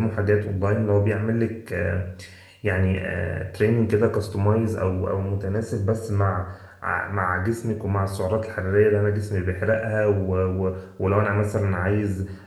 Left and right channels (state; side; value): identical; both; correlation 1.00